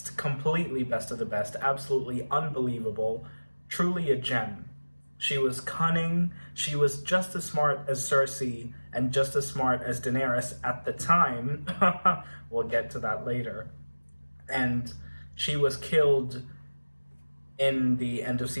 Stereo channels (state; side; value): inverted; both; correlation -1.00